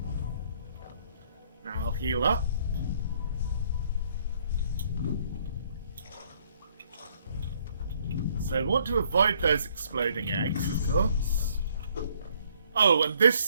Now I'll heal up. So I want to avoid those exploding eggs, of course. Oh, and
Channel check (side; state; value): both; inverted; correlation -0.65